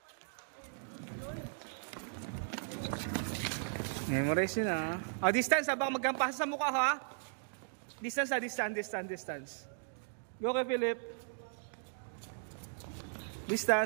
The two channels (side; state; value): left; silent; digital silence